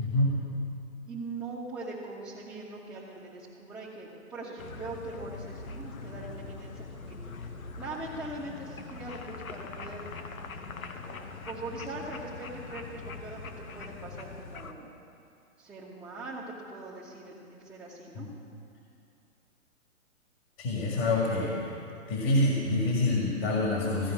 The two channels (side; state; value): both; normal; correlation -0.19